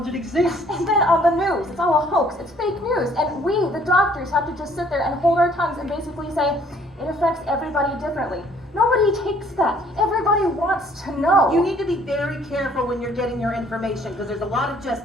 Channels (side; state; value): both; normal; correlation 0.60